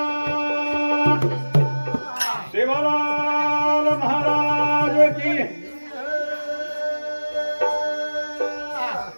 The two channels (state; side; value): inverted; both; correlation -1.00